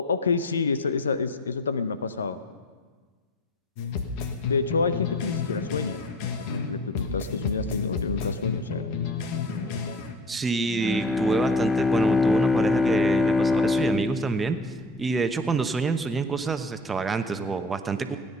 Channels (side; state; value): both; normal; correlation 0.40